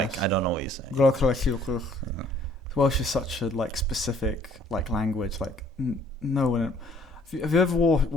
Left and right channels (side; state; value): both; normal; correlation 0.59